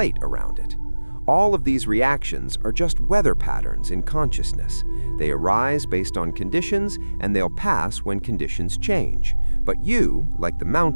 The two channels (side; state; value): both; inverted; correlation -1.00